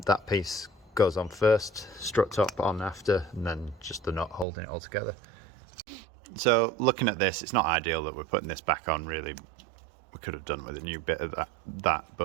piece goes on first, strut top on after, and then just the nut holding it all together. So looking at this, it's not ideal that we're putting this back on really. We could have done with a new bit of that,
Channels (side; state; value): left; drops out; at 4.5 s